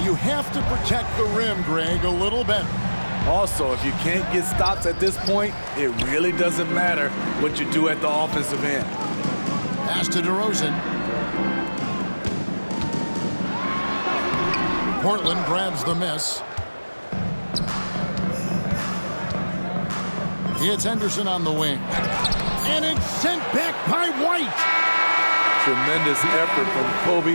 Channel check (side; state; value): both; inverted; correlation -1.00